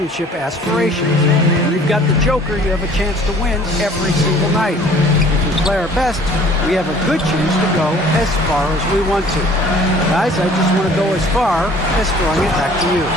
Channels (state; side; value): normal; both; correlation 0.52